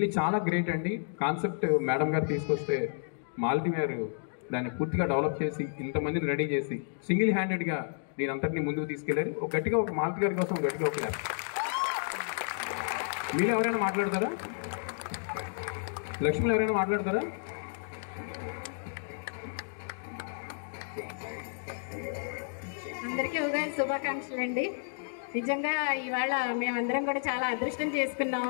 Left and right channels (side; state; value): right; silent; digital silence